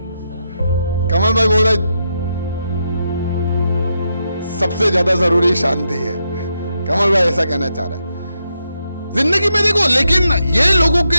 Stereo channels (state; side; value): inverted; both; correlation -0.83